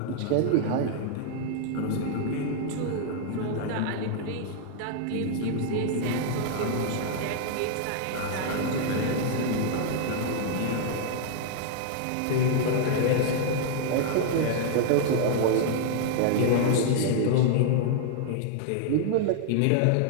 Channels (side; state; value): both; different; correlation 0.00